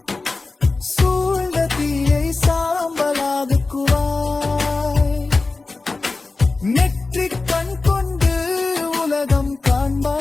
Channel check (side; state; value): right; quieter; 3.6 dB